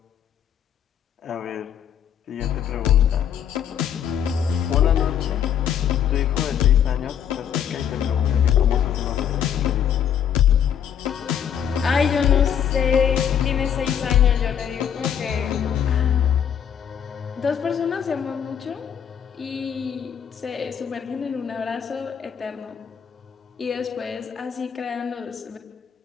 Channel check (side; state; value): right; quieter; 8.8 dB